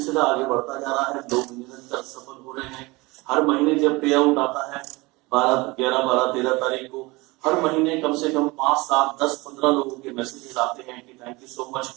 आगे बढ़ता जा रहा है। लोग निरंतर सफल हो रहे हैं। हर महीने जब पे आउट आता है 11, 12, 13 तारीख को, हर महीने कम से कम 5, 7, 10, 15 लोगों के मैसेजेस आते हैं कि थैंक यू सो मच,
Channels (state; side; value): quieter; left; 23.3 dB